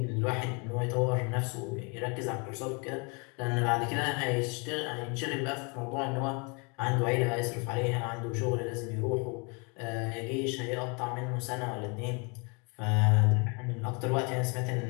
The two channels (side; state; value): right; quieter; 32.6 dB